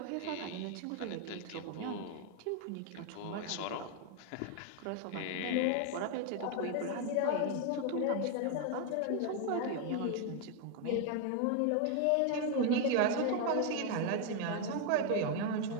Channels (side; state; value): both; different; correlation 0.00